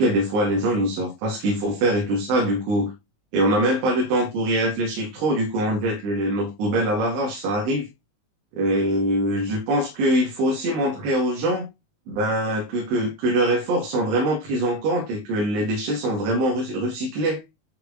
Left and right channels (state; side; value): late; left; 19 ms